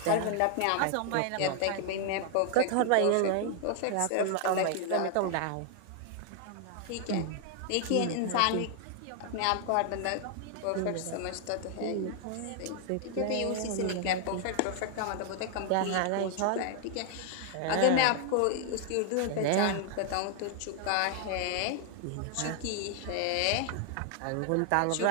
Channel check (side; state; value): both; different; correlation 0.00